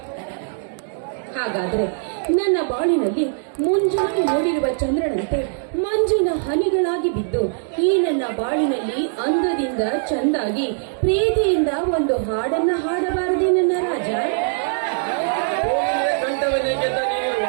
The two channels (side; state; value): left; silent; digital silence